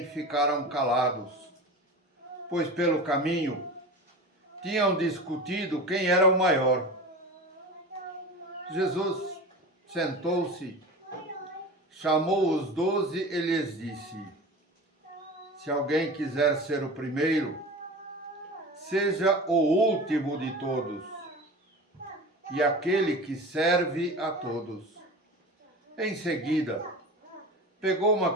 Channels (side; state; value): both; normal; correlation 0.33